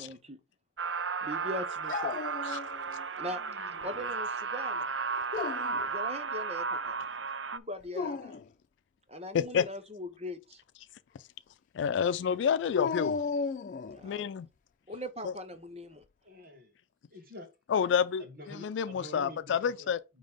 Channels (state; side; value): quieter; right; 3.0 dB